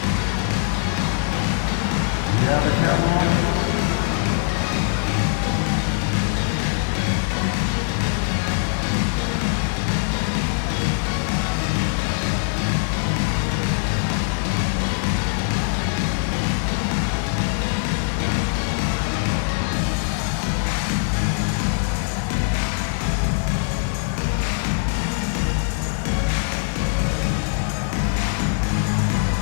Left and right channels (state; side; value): silent; right; digital silence